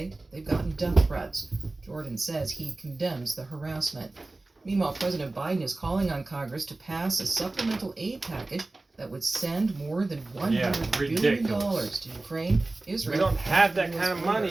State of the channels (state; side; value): quieter; left; 3.1 dB